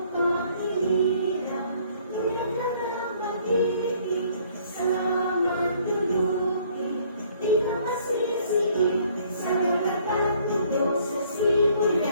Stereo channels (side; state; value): both; inverted; correlation -0.61